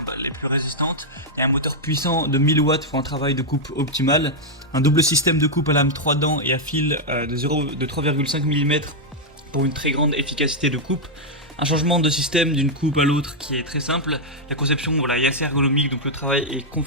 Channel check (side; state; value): both; normal; correlation -0.03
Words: les plus résistantes. Il y a un moteur puissant de 1000 watts pour un travail de coupe optimal, un double système de coupe à lame 3 dents et à fil de 3,5 mm pour une très grande efficacité de coupe. Un changement de système d'une coupe à l'autre qui est très simple. La conception est assez ergonomique, donc le travail est